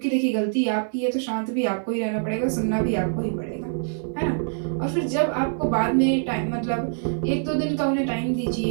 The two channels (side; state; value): left; silent; digital silence